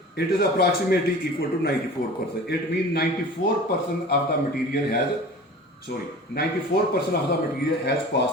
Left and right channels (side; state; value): both; normal; correlation 0.40